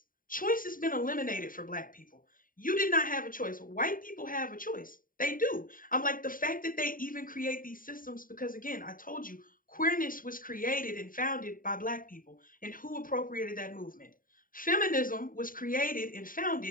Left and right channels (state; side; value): late; right; 0.40 ms